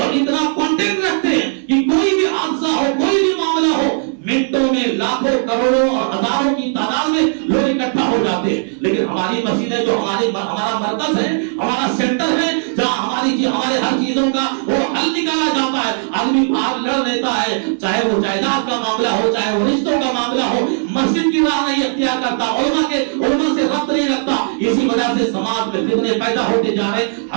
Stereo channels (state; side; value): silent; left; digital silence